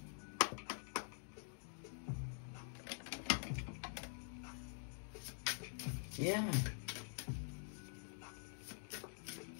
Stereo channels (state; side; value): silent; right; digital silence